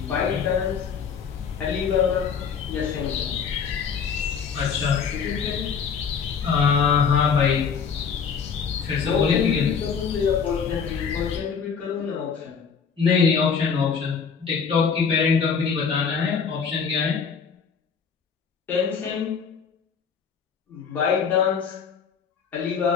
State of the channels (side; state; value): right; quieter; 6.3 dB